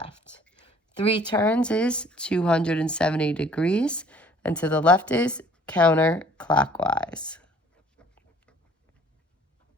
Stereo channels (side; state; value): both; normal; correlation 0.55